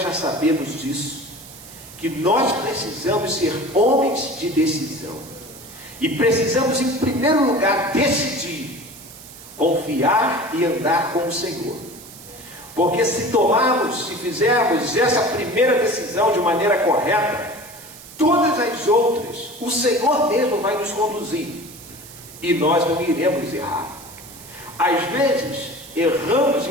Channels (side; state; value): right; noise; hiss, 17 dB below the sound